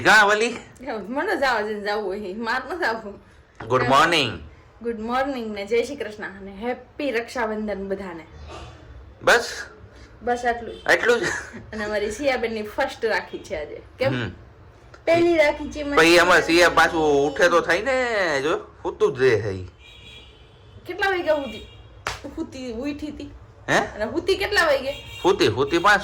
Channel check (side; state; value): both; identical; correlation 1.00